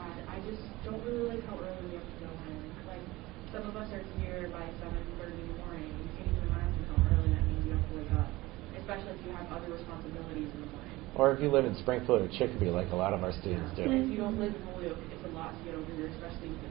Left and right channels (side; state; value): left; quieter; 19.7 dB